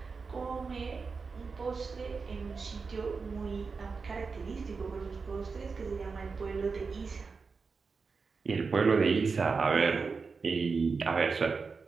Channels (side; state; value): left; quieter; 4.8 dB